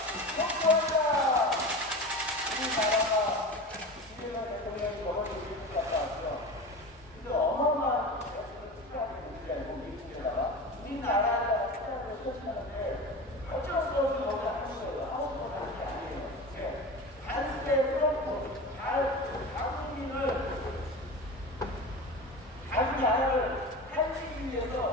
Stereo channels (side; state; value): both; normal; correlation 0.30